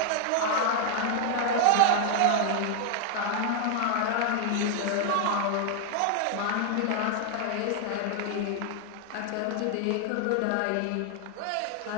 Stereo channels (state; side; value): different; both; correlation 0.00